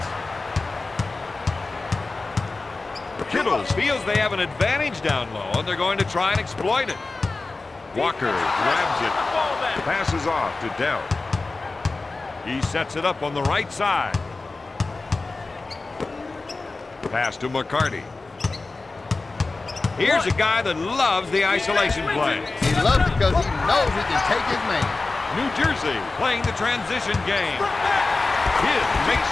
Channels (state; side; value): quieter; right; 3.6 dB